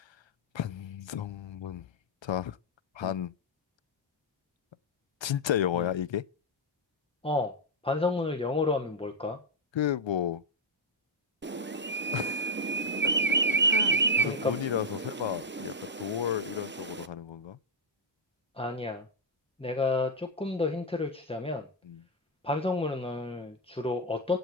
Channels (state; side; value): normal; both; correlation -0.01